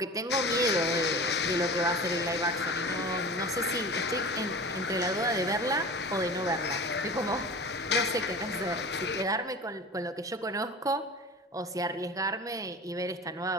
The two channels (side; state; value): both; normal; correlation 0.35